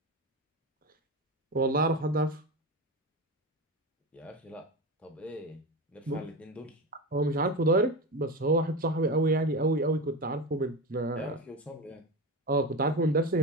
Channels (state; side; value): normal; both; correlation 0.22